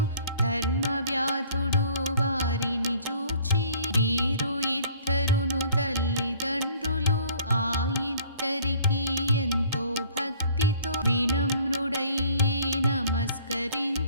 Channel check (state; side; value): inverted; both; correlation -0.55